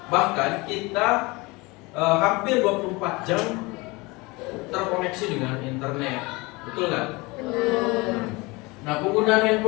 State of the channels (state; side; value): quieter; right; 24.3 dB